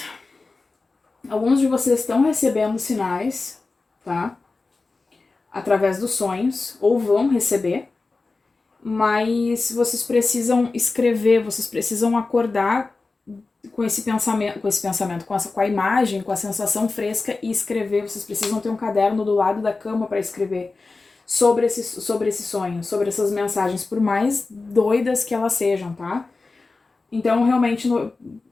Alguns de vocês estão recebendo sinais, tá? Através dos sonhos, ou vão receber, mas vocês precisam escrever, vocês precisam acordar com esse pensamento, com a imagem, com a sensação fresca e escrever. Vocês precisam ter um caderno do lado da cama para escrever sobre esse sonho, sobre essas mensagens, por mais doidas que elas sejam, tá? Então, realmente,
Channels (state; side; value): quieter; right; 3.8 dB